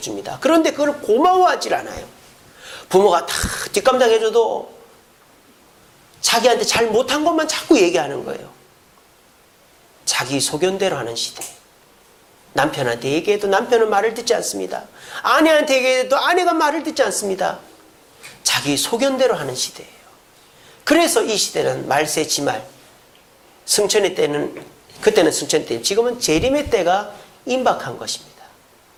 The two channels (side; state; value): both; identical; correlation 1.00